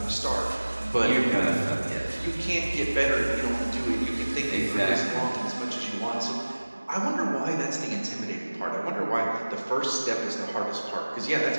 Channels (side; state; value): both; inverted; correlation -1.00